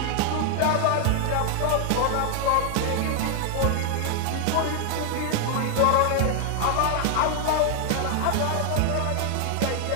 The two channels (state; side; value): different; both; correlation 0.00